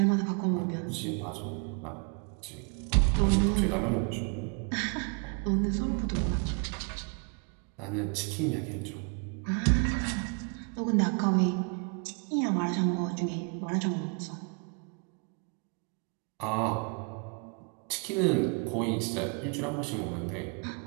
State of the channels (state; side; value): quieter; left; 36.6 dB